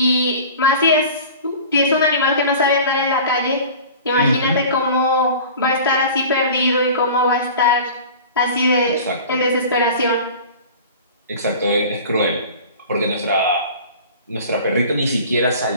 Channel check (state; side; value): inverted; both; correlation -0.40